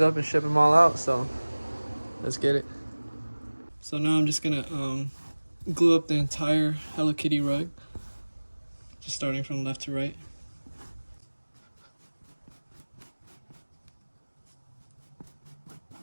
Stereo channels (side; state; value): both; inverted; correlation -1.00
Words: and ship them all out, so let's get it. So now I'm just gonna glue up the entire Hello Kitty rug. Just starting from left to right.